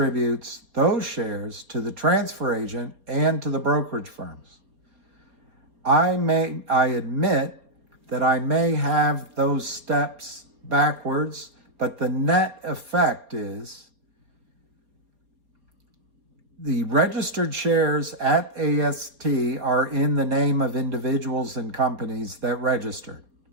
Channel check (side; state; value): left; late; 4.3 ms